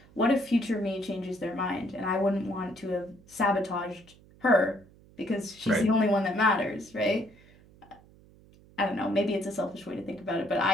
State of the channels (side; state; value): right; noise; hum, 26 dB below the sound